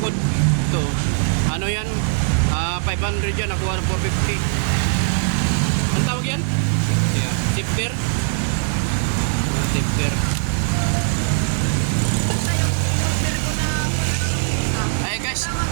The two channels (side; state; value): left; silent; 65 dB below the other